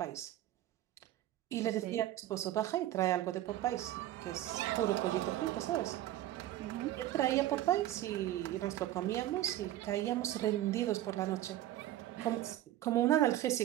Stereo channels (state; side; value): quieter; left; 13.7 dB